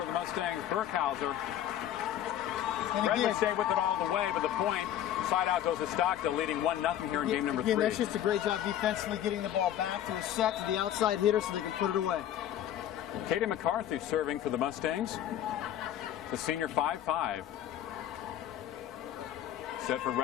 the Mustangs, Burkhauser. And again, Redwood stayed with it all the way, but the point, side out goes to Stockdale, leading 1-0 here in game number 3. That's just a great job defensively, getting the ball back to a set to the outside hitter so they can put it away. Katie McCarthy serving for the Mustangs. The senior 5'5". Set for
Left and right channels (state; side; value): quieter; right; 11.2 dB